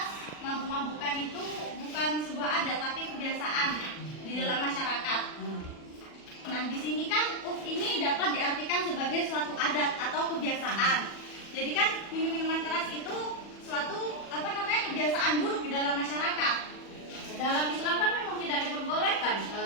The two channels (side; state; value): right; late; 40 ms